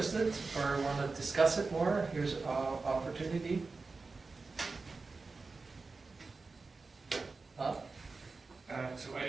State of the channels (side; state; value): left; quieter; 4.0 dB